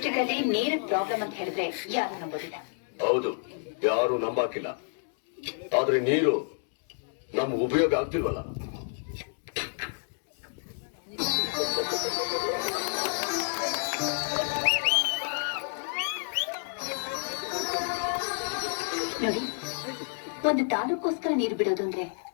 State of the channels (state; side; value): silent; right; 58 dB below the other